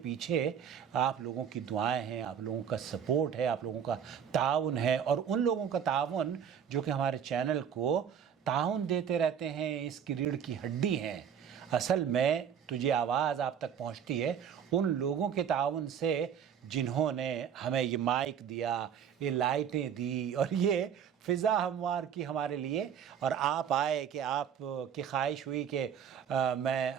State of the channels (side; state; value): left; quieter; 8.2 dB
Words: پیچھے آپ لوگوں کی دعائیں ہیں، آپ لوگوں کا سپورٹ ہے، آپ لوگوں کا تعاون ہے، اور ان لوگوں کا تعاون جو کہ ہمارے چینل کو تعاون دیتے رہتے ہیں، اس کی ریڑھ کی ہڈی ہیں۔ اصل میں تجھے آواز آپ تک پہنچتی ہے ان لوگوں کے تعاون سے جنہوں نے ہمیں یہ مائک دیا، یہ لائٹیں دی، اور یہ فضا ہموار کی ہمارے لیے، اور آپ آئے کہ آپ کی خواہش ہوئی کہ میں